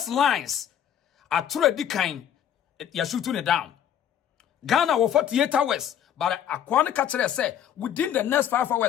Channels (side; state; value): right; quieter; 9.6 dB